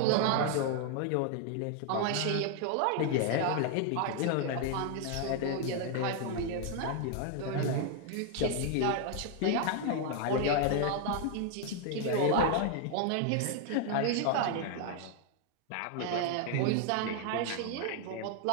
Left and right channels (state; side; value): different; both; correlation 0.00